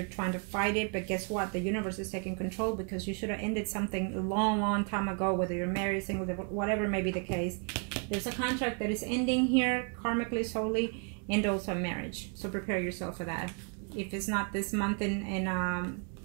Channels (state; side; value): quieter; left; 38.0 dB